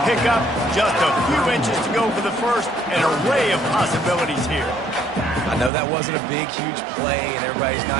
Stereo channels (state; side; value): drops out; left; at 5.7 s